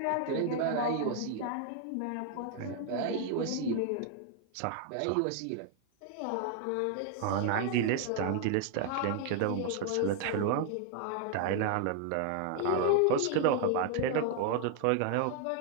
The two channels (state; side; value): different; both; correlation 0.00